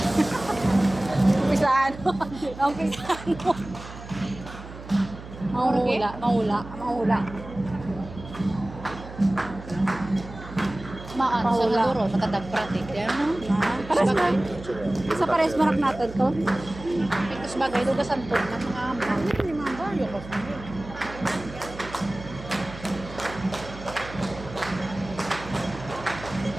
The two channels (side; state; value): right; noise; hum, 14 dB below the sound